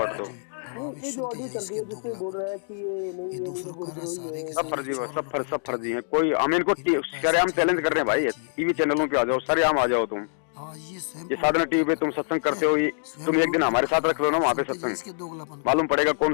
दो। ये जो ऑडियो चल रही है जिससे बोल रहा है कि ये नहीं है, सब फर्जी है, सब फर्जी है। कोई हम इनको सरेआम चैलेंज कर रहे हैं भाई, टीवी चैनलों पे आ जाओ, सरेआम आ जाओ तुम। ये साधना टीवी पे तुम सत्संग करते हो, तुम एक दिन हमारे साथ रख लो ना वहाँ पे सत्संग, मालूम पड़ेगा कौन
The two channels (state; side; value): silent; right; digital silence